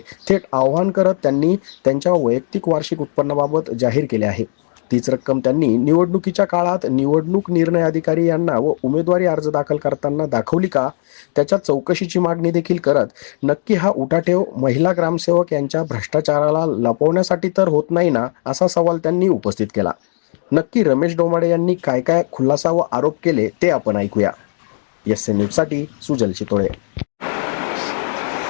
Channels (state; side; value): silent; right; digital silence